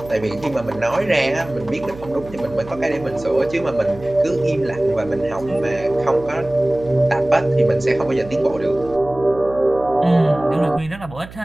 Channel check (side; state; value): right; noise; hum, 17 dB below the sound